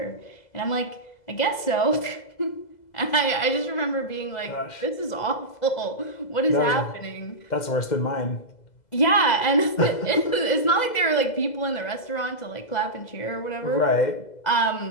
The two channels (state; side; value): late; right; 2.0 ms